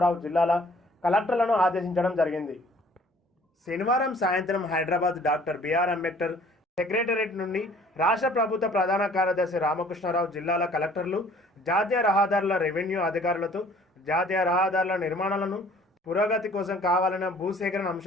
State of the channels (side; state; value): both; normal; correlation 0.55